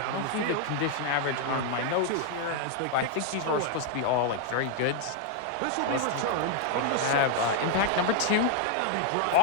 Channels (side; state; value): both; different; correlation 0.00